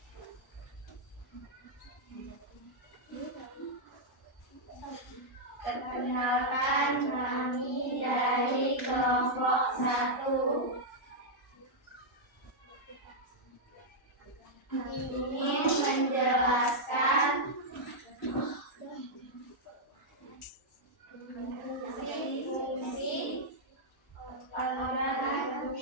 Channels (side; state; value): both; normal; correlation -0.05